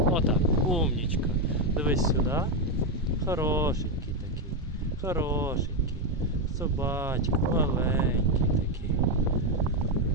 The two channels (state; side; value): normal; both; correlation 0.06